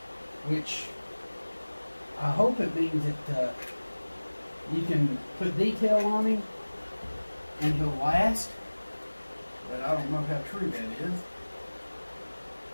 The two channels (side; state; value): both; inverted; correlation -1.00